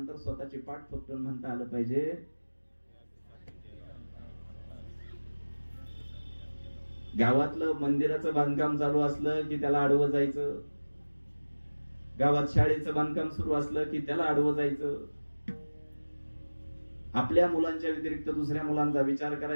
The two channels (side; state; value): both; inverted; correlation -1.00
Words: स्वतःची पाठ थोपटून म्हणता आलं पाहिजे गावातलं मंदिराचं बांधकाम चालू असलं की त्याला आडवं जायचं, गावात शाळेचं बांधकाम सुरू असलं की त्याला आडवं जायचं. आपल्या मुलांच्या व्यतिरिक्त दुसऱ्या मुलांचा विचार